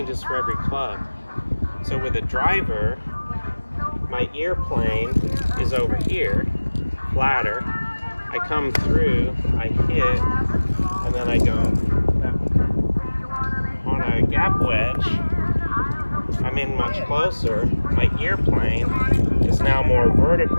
for every club. So with a driver, my ear plane is over here, flatter. I come through, I hit, and then I go that way. On a gap wedge, I'm in much closer. My ear plane is now more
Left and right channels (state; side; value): inverted; both; correlation -1.00